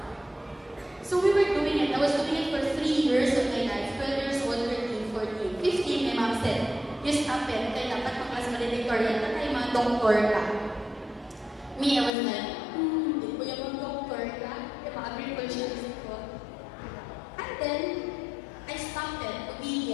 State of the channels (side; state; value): right; drops out; at 12.1 s